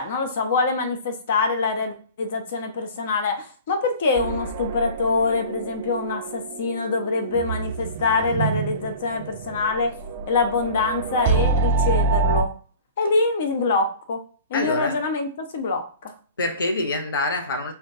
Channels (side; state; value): both; inverted; correlation -0.41